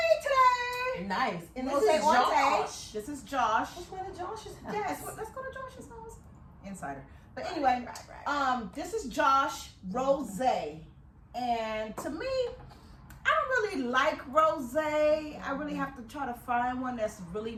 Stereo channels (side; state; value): both; identical; correlation 1.00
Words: today. Nice. And this Rosé is Onte. Josh. This is Josh. Let's go to Josh's house. Yes, let's go to Josh's house. Insider. But anyway, this is Josh Rosé. And to me, I don't really like rosé. I really have to try to find one that's really